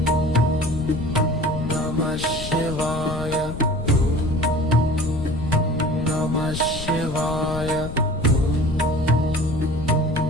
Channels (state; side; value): noise; left; rumble, 8 dB below the sound